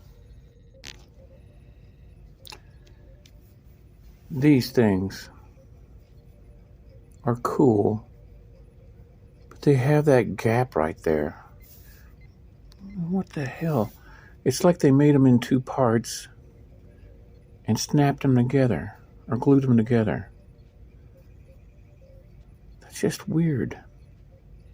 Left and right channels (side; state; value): both; identical; correlation 1.00